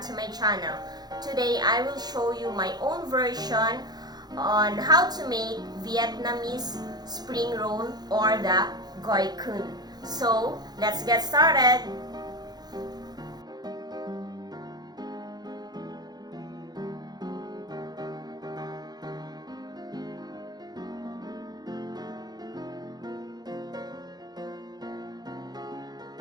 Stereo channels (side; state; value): left; late; 0.19 ms